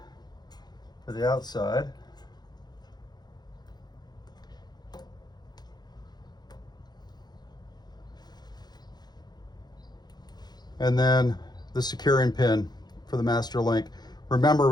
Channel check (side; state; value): right; late; 0.20 ms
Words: for the outside. And then the securing pin for the master link. Remember,